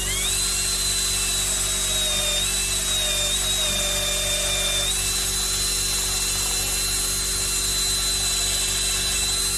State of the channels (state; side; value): identical; both; correlation 1.00